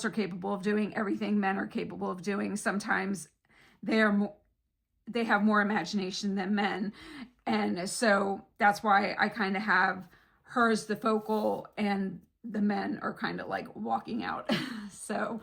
are capable of doing everything men are capable of doing. Sometimes they have more imagination than men." And so that's why I kind of have her as the focal and the men are kind of like walking out. So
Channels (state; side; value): identical; both; correlation 1.00